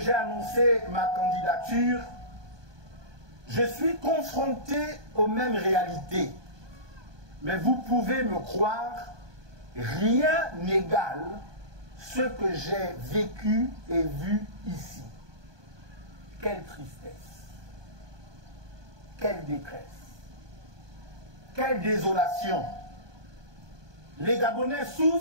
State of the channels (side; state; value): left; late; 1.2 ms